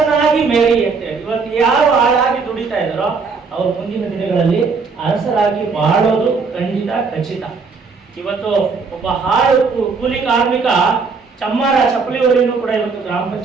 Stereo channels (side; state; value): left; quieter; 4.8 dB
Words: ಮೇರಿ ಅಂತ ಹೇಳಿ. ಇವತ್ತು ಯಾರು ಆಳಾಗಿ ದುಡಿತಾ ಇದ್ದಾರೋ ಅವ್ರು ಮುಂದಿನ ದಿನಗಳಲ್ಲಿ ಅರಸರಾಗಿ ಬಾಳೋದು ಖಂಡಿತ ಖಚಿತ. ಇವತ್ತು ಒಬ್ಬ ಹಾಳು ಕೂಲಿ ಕಾರ್ಮಿಕ ಚಮ್ಮಾರ ಚಪ್ಪಲಿವರಿಯನ್ನು ಕೂಡ ಇವತ್ತು ಗ್ರಾಮ